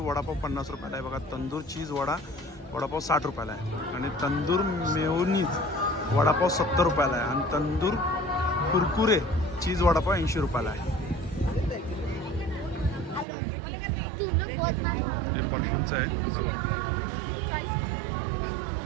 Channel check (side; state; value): left; drops out; at 13.2 s